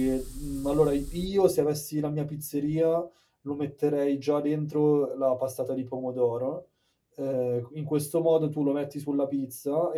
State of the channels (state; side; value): identical; both; correlation 1.00